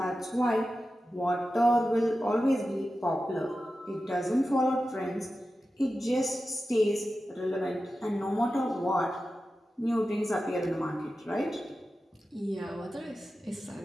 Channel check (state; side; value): normal; both; correlation 0.93